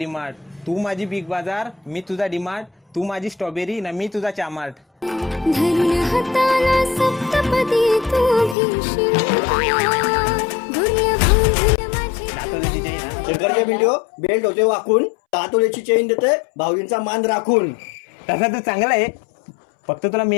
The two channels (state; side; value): drops out; right; at 8.6 s